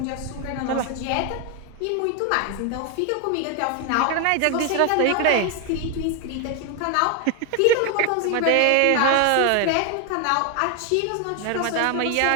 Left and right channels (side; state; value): both; different; correlation 0.01